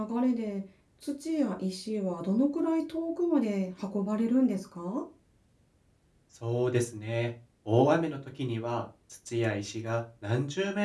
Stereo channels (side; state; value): both; identical; correlation 1.00